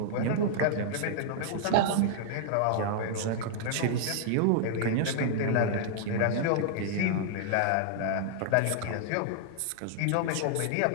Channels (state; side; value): different; both; correlation -0.01